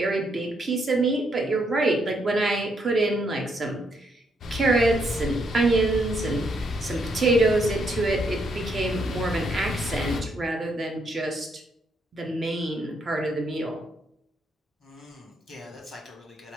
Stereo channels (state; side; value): normal; both; correlation 0.75